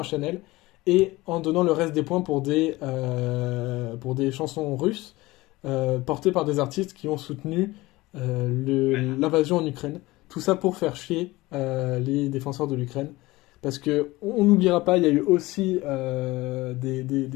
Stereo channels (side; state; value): right; quieter; 20.0 dB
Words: à Chanel, et en donnant le reste des points pour des chansons russes, portées par des artistes qui ont soutenu l'invasion en Ukraine. Tout ça pour faire chier les défenseurs de l'Ukraine. Parce que on n'oubliera pas, il y a eu aussi